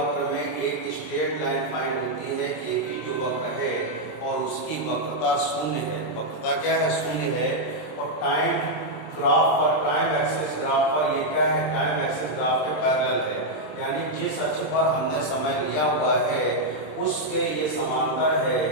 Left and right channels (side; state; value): right; late; 26 ms